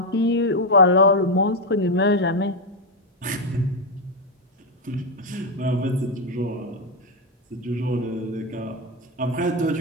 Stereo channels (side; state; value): both; normal; correlation 0.04